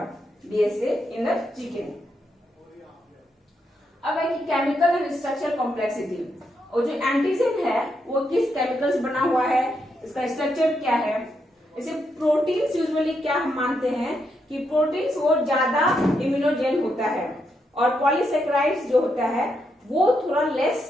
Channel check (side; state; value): both; normal; correlation 0.81